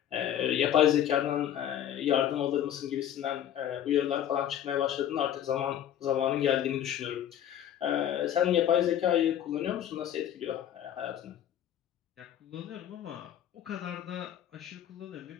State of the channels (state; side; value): quieter; right; 10.6 dB